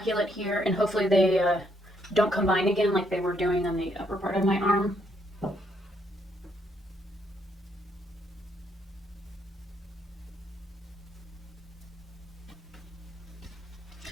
here, and hopefully they don't combine again like they were doing on the upper part of my arm.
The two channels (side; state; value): both; normal; correlation 0.73